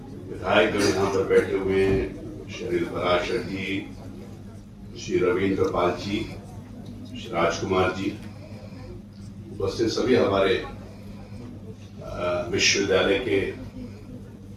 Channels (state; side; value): identical; both; correlation 1.00